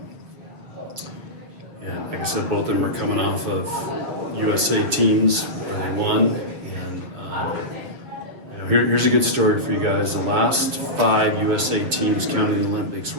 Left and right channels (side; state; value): left; late; 7.3 ms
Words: like I said, both of them are coming off of USA teams where they won. And here's a good story for you guys. The last 5 USA teams, counting the Olympics,